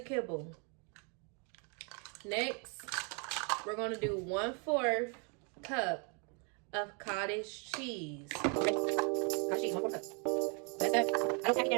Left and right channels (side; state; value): left; quieter; 36.1 dB